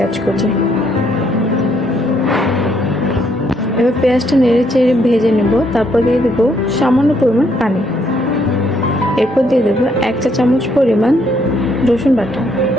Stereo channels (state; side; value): normal; both; correlation 0.71